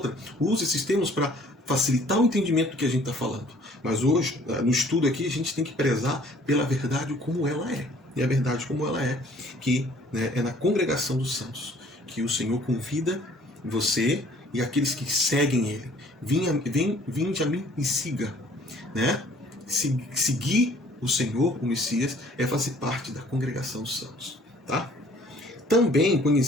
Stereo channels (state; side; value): normal; both; correlation 0.56